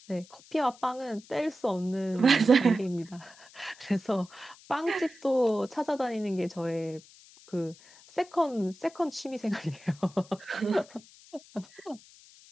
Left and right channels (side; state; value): left; noise; hiss, 23 dB below the sound